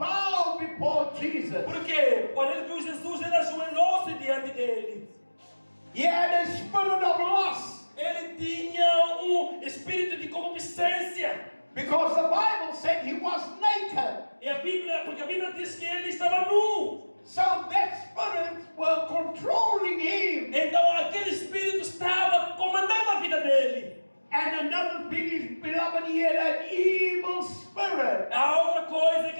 before Jesus. Por quê? Quando ele viu Jesus, ele ajoelhou-se diante dele. He had a spirit of lust. Ele tinha espírito de concupiscência. Because the Bible said he was naked. Porque a Bíblia diz que ele estava nu. So that spirit were controlling him. Então aquele espírito estava comandando a vida dele. And another thing is, beloved, he had an evil spirit. A outra coisa é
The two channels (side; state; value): both; inverted; correlation -1.00